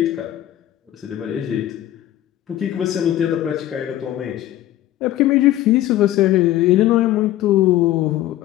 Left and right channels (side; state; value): right; quieter; 13.7 dB